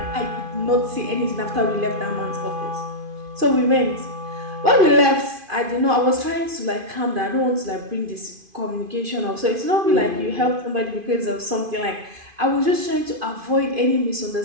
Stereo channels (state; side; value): late; left; 2.5 ms